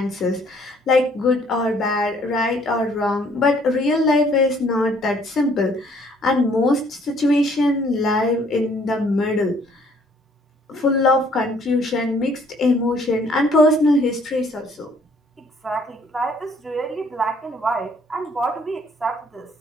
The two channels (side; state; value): both; normal; correlation 0.62